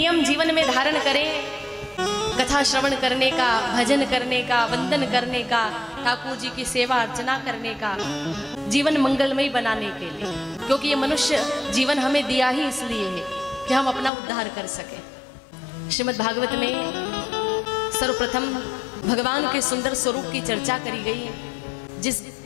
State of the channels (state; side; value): drops out; right; at 14.1 s